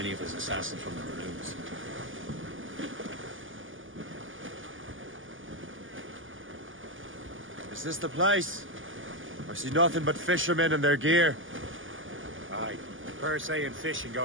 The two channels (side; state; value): left; late; 0.58 ms